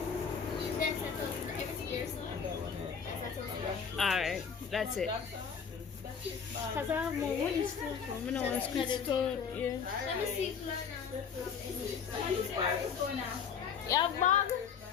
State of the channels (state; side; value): quieter; right; 6.6 dB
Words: Alright, that's it. Cause I have more money still from when I was store. Yeah. Let me see if You have bag?